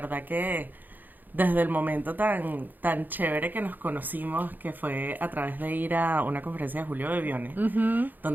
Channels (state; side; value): late; left; 0.086 ms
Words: que desde el momento tan chévere que nos conocimos, que fue a través de ir a una conferencia de Julio Bebione,